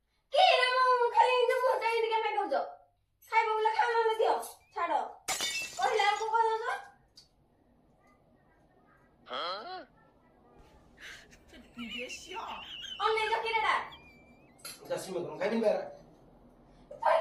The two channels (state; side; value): identical; both; correlation 1.00